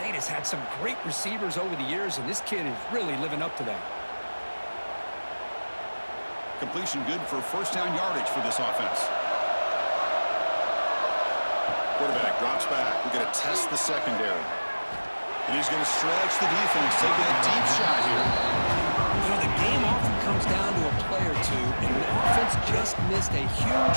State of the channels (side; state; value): both; inverted; correlation -1.00